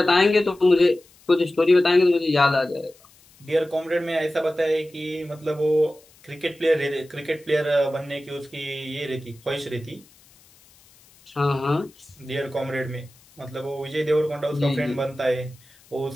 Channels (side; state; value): left; noise; hiss, 28 dB below the sound